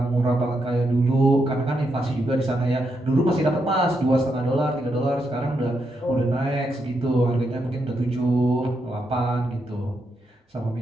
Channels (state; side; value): normal; both; correlation 0.82